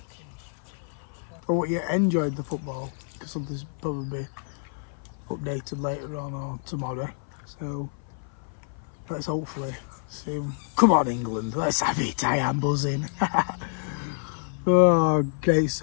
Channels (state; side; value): silent; right; 56 dB below the other